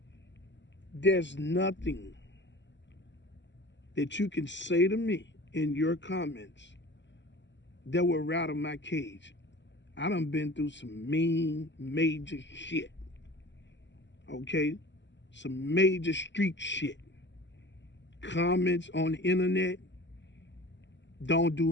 there's nothing that you can say to me in your comments that will rattle my cage. I done been through some mean, major shit. Okay? Some major street shit. Comments on the internet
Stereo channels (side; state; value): right; late; 0.53 ms